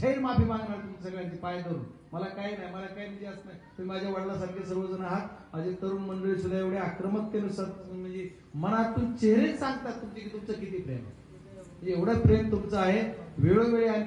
माफी मागणार तुमच्या सगळ्यांची पाय धरून. मला काही नाही, मला काही निधी असं नाही. तुम्ही माझ्या वडिलांसारखे सर्वजण आहात. माझे तरुण मंडळी सुद्धा एवढे आक्रमकतेने म्हणजे मनातून चेहरे सांगतात तुमचे की तुमचं किती प्रेम आहे. एवढं प्रेम तुमचं आहे. वेळोवेळी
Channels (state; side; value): identical; both; correlation 1.00